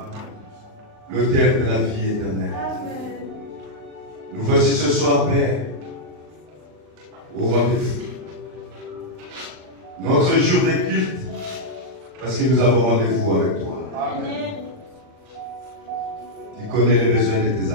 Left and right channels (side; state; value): left; late; 39 ms